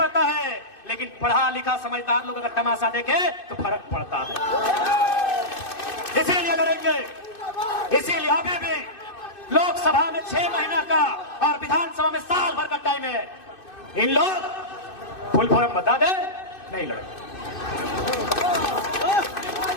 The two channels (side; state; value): right; late; 2.6 ms